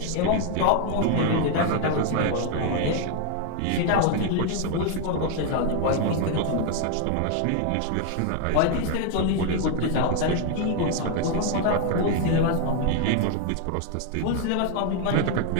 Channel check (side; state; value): both; different; correlation 0.00